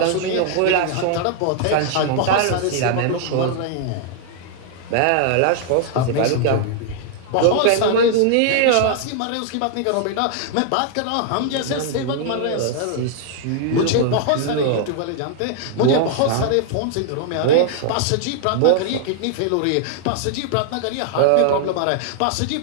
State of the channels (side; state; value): both; different; correlation 0.00